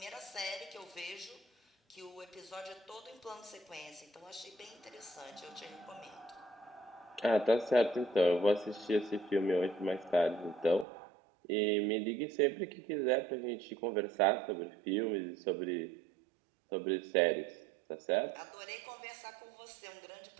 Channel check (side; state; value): left; drops out; at 10.9 s